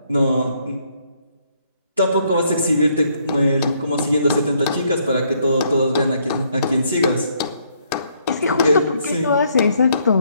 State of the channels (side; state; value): both; inverted; correlation -0.70